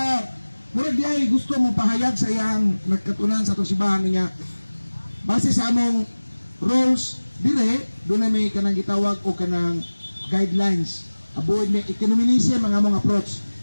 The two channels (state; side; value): inverted; both; correlation -1.00